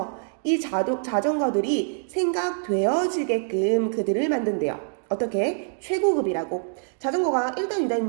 이 자전거들이 생각되어지게끔 그들을 만든대요. 어떻게? 최고급이라고. 자전거가 1단, 2단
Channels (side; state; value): left; silent; digital silence